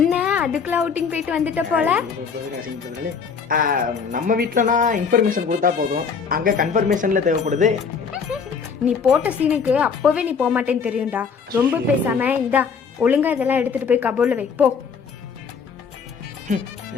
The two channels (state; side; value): quieter; right; 5.9 dB